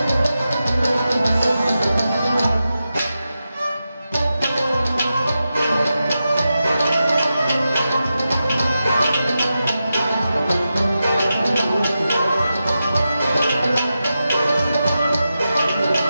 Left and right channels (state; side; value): inverted; both; correlation -0.90